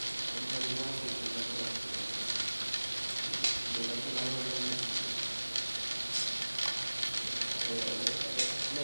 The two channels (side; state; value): both; inverted; correlation -1.00